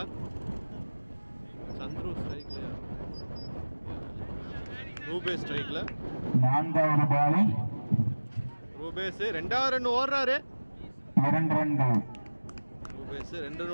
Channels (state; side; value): inverted; both; correlation -1.00